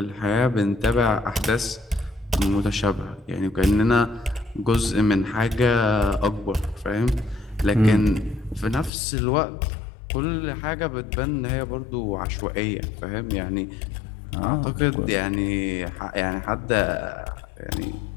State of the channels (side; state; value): right; drops out; at 8.9 s